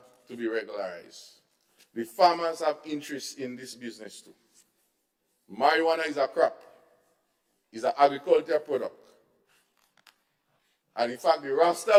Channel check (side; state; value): both; identical; correlation 1.00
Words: to be regularized. The farmers have interest in this business too. Marijuana is a crop, is an agricultural product. And in fact, the Rasta